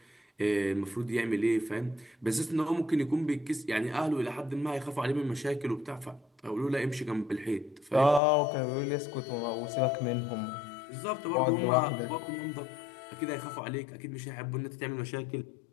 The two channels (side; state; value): right; drops out; at 8.2 s